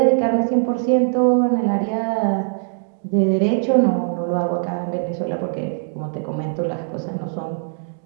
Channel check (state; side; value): silent; left; digital silence